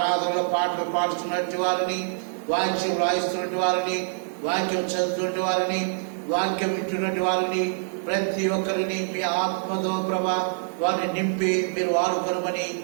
పాటలు పాడుతున్నటువంటి వారిని, వాక్యం రాయిస్తున్నటువంటి వారిని, వాక్యం చదువుతున్నటువంటి వారిని, వాక్యం వింటున్నటువంటి వారిని ప్రతి ఒక్కరిని మీ ఆత్మతో ప్రభా వారిని నింపి మీరు వాడుకొనమని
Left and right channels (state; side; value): silent; left; 61 dB below the other